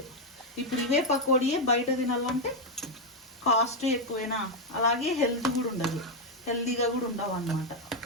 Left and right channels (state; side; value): normal; both; correlation 0.02